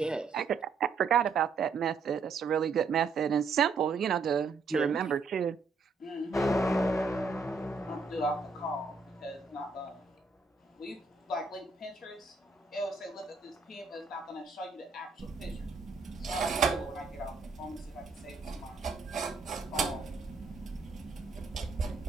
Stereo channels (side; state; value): left; quieter; 4.4 dB